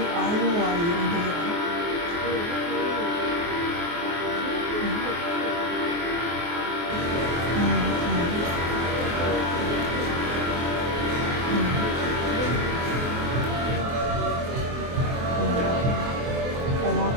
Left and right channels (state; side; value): late; left; 24 ms